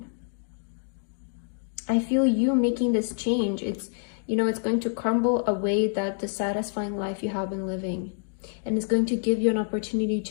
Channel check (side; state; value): right; silent; digital silence